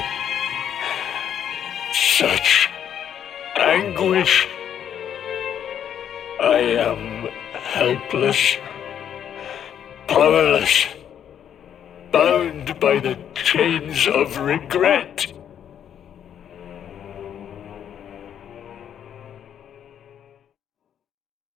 such anguish. I am helpless, powerless, bound by the chains of regret.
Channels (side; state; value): right; quieter; 9.3 dB